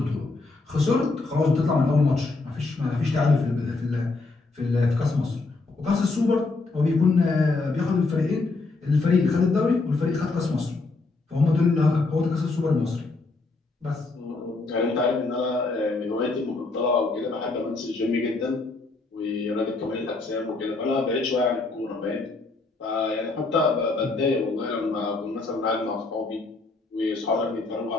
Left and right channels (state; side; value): quieter; right; 3.6 dB